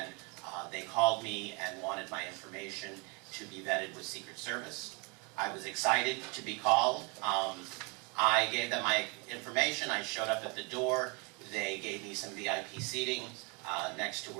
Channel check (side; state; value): left; quieter; 31.4 dB